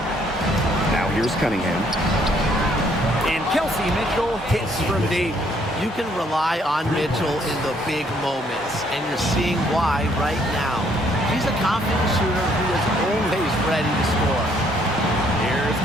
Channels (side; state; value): both; normal; correlation 0.66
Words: Now here's Cunningham. And Kelsey Mitchell hits from deep. You can rely on Mitchell in the big moments, and you're seeing why right now. She's a confident shooter who is always ready to score. Here's